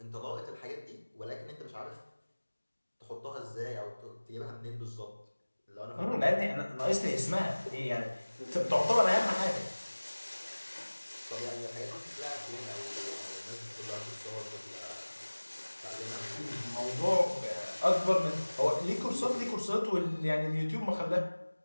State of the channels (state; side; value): inverted; both; correlation -1.00